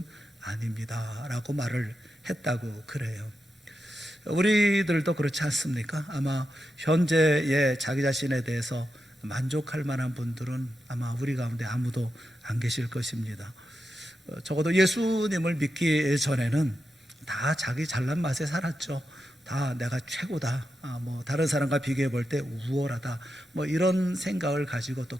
아닙니다 라고 말을 했다고 그래요. 우리들도 그렇지 않습니까? 아마 현재의 자기 자신에 대해서 만족할 만한 분들은 아마 우리 가운데 아무도 안 계실 것입니다. 적어도 예수님을 믿기 전에는 다 자기 잘난 맛에 살았죠. 다 내가 최고다, 다른 사람과 비교해 볼 때 우월하다, 이런 생각을 가지고 또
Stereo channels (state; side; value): normal; both; correlation 0.88